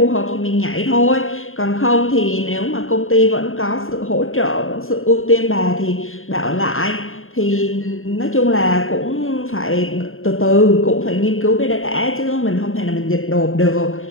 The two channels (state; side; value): late; right; 0.60 ms